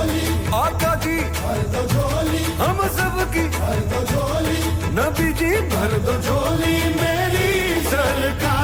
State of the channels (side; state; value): both; identical; correlation 1.00